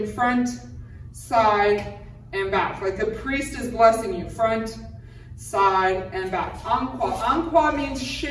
front, side, and back. Like the priest is blessing you, front, side, and back. En croix. En croix means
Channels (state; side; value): identical; both; correlation 1.00